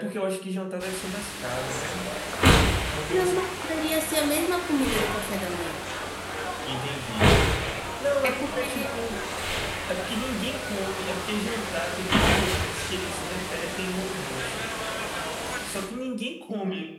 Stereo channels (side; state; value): both; identical; correlation 1.00